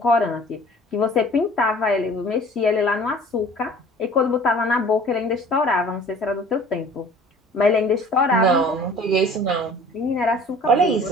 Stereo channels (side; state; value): both; normal; correlation 0.48